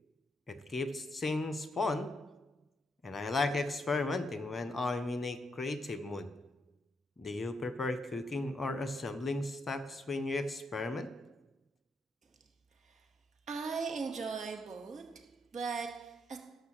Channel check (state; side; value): normal; both; correlation 0.79